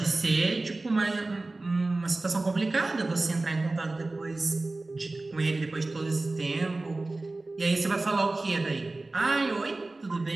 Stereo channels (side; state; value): left; quieter; 3.1 dB